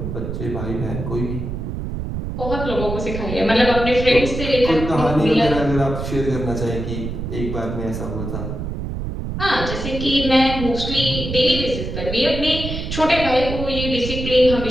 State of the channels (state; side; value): noise; right; rumble, 5 dB below the sound